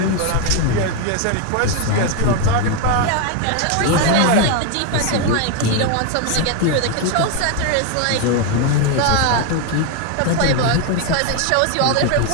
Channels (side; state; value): both; different; correlation 0.01